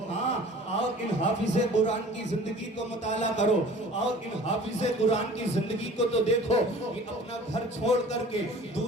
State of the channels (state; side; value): normal; both; correlation 0.46